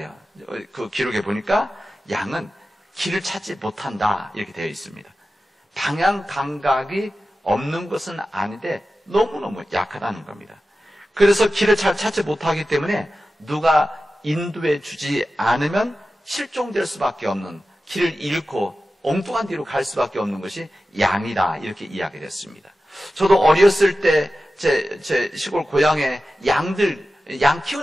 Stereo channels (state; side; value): normal; both; correlation 0.94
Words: 그 기록에 보니까 양은 길을 찾지 못한다 이렇게 되어 있습니다. 방향 감각이 없는 것은 아닌데 너무너무 약하다는 겁니다. 그래서 길을 잘 찾지 못하기 때문에 누가 인도해 주지 않으면 실종될 수밖에 없는, 길을 잃고 엉뚱한 뒤로 갈 수밖에 없는 것이 양이다 이렇게 이야기됐습니다. 저도 어렸을 때 제 시골 고향에 양